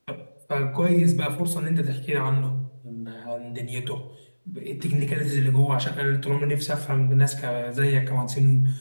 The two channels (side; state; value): both; inverted; correlation -1.00